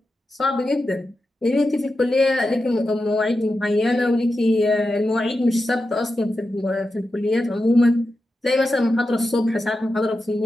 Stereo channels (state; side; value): normal; both; correlation 0.90